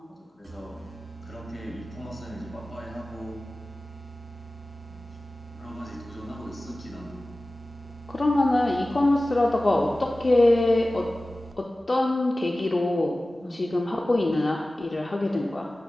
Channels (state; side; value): normal; both; correlation 0.97